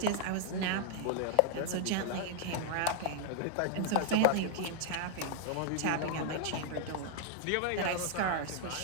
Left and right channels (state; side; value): different; both; correlation 0.00